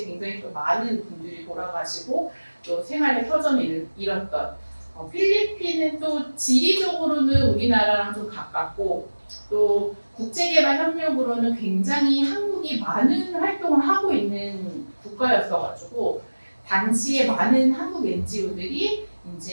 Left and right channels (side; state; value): both; inverted; correlation -1.00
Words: 굉장히 또 많은 분들이 돌아가시고 또 생활의 터전을 잃었던 필리핀은 또 지리적으로는 우리나라랑 좀 가깝고 또 국제개발협력으로는 굉장히 한국이 많은 활동을 하고 있는 국가였어가지고 당시에 많은 한국 NGO들이